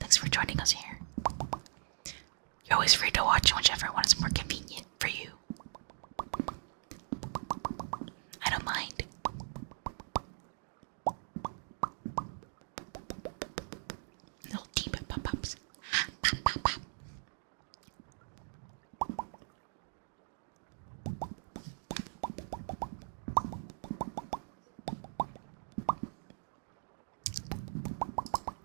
for joining us here. You're always free to watch whichever one is more convenient for you. I don't mind. Little deep pop-ups. Pop, pop, pop.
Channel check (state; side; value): silent; left; digital silence